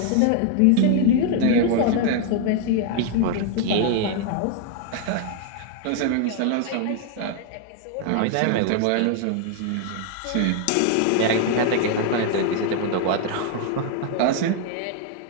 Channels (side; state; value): both; different; correlation 0.00